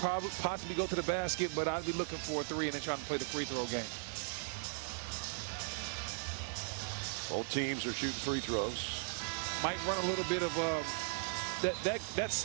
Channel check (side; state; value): left; silent; digital silence